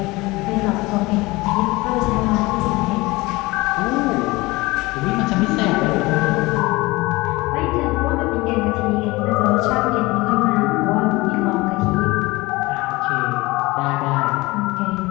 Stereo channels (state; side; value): quieter; right; 21.8 dB